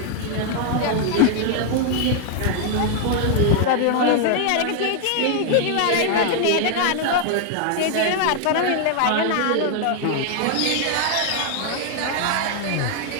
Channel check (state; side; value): different; both; correlation 0.00